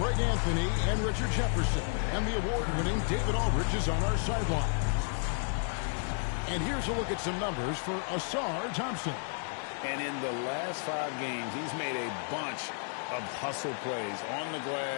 Anthony and Richard Jefferson, and the award-winning David Aldridge is on our sideline. And here's a look at some numbers for Ausar Thompson. And in the last 5 games, he's made a bunch of hustle plays on the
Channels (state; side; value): silent; right; 56 dB below the other